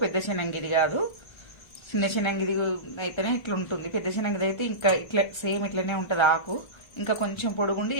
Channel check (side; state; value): right; late; 1.3 ms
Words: పెద్ద శనంగిది కాదు. చిన్న శనంగిది అయితేనే ఇట్లా ఉంటుంది, పెద్ద శనంగిది అయితే ఇంకా ఇట్లా సేమ్ ఇట్లనే ఉంటుంది. ఆకు ఇంకా కొంచెం పొడుగుండి